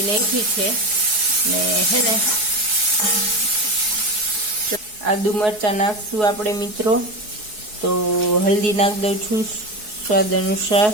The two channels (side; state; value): left; late; 4.7 ms